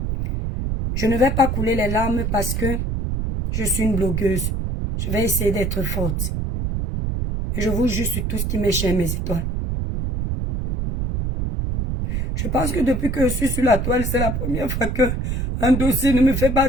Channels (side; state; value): right; noise; rumble, 1 dB below the sound